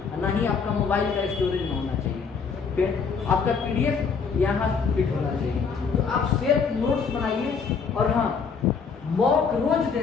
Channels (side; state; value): right; quieter; 5.7 dB